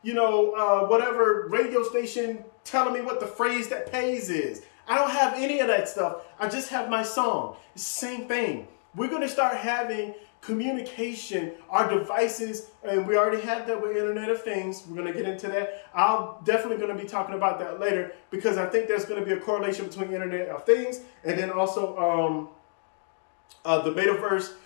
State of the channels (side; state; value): right; silent; digital silence